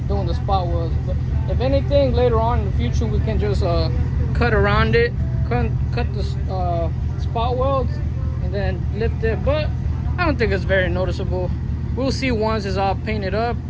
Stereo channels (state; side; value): identical; both; correlation 1.00